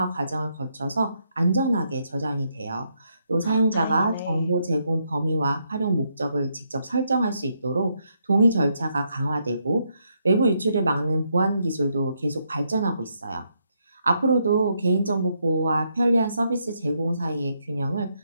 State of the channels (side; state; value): both; inverted; correlation -0.77